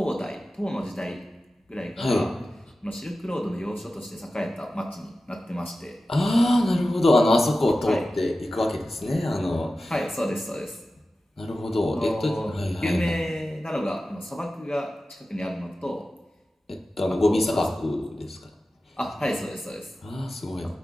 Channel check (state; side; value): normal; both; correlation 0.94